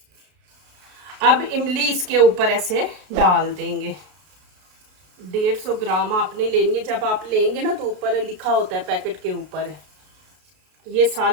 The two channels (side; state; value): left; late; 33 ms